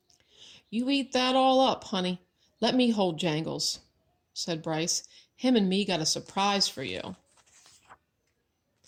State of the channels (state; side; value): identical; both; correlation 1.00